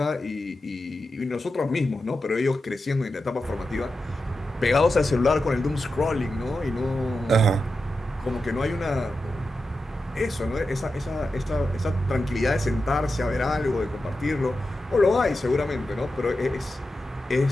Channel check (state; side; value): normal; both; correlation 0.90